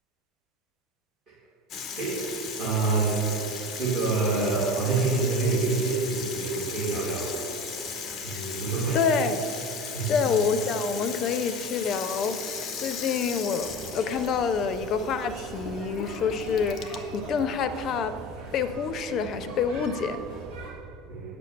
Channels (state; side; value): normal; both; correlation 0.31